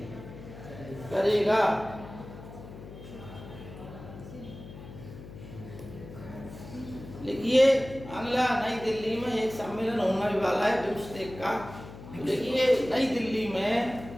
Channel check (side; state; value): left; noise; hum, 14 dB below the sound